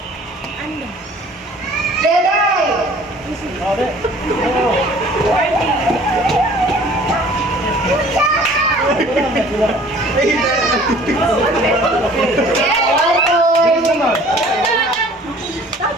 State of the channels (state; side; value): normal; both; correlation 0.51